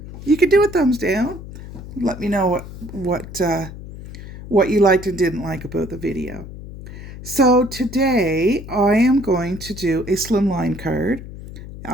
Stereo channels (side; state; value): left; noise; hum, 13 dB below the sound